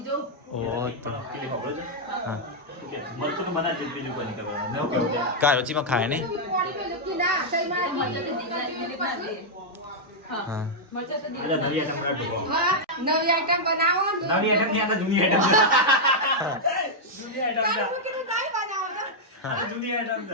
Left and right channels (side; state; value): both; normal; correlation -0.05